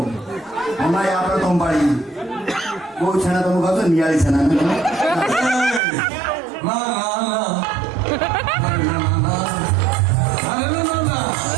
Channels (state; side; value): drops out; left; at 5.8 s